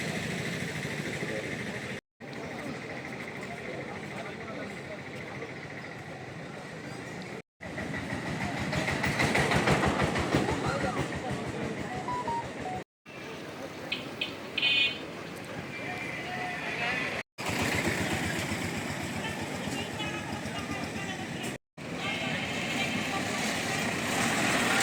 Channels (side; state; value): both; identical; correlation 1.00